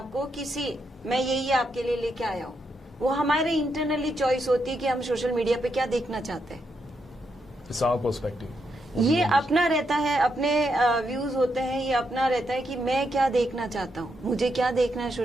किसी मैं यही आपके लिए लेके आया हूँ। वो हमारे इंटरनली चॉइस होती है कि हम सोशल मीडिया पे क्या देखना चाहते हैं। पर्सपेक्टिव ये अपना रहता है, अपने व्यूज होते हैं, ये अपना रहता है कि मैं क्या देखना चाहता हूँ, मुझे क्या देखना है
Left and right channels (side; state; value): both; normal; correlation 0.81